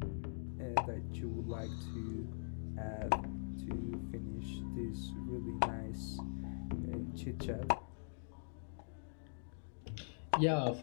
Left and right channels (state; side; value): silent; right; digital silence